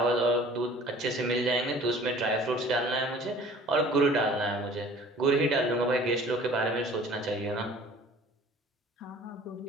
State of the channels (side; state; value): both; normal; correlation 0.48